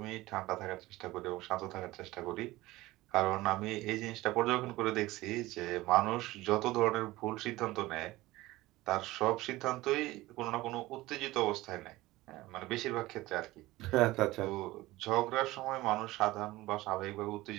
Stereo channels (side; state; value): left; quieter; 18.6 dB